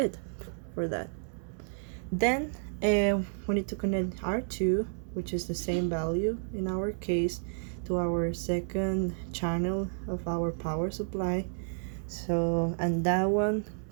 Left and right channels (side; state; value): left; silent; 57 dB below the other